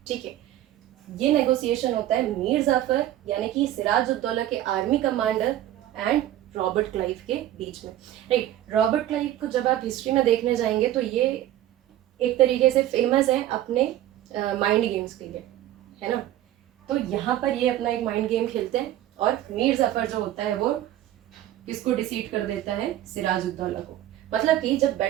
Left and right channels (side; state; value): left; quieter; 13.2 dB